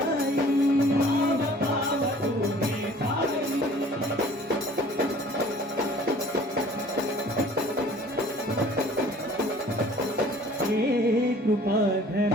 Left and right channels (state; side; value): normal; both; correlation 0.51